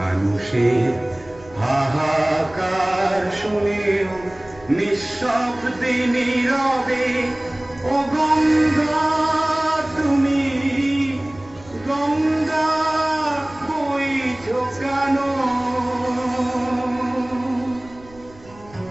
হাহাকার শুনেও নিঃশব্দে নীরবে ও গঙ্গা তুমি গঙ্গা বইছো কেন?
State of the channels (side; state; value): right; noise; rumble, 23 dB below the sound